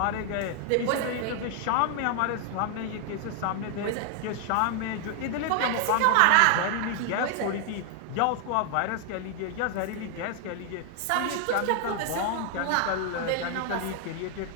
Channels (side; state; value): both; different; correlation 0.00